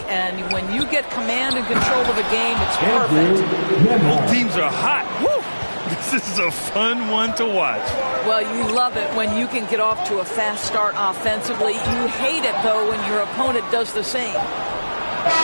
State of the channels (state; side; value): inverted; both; correlation -1.00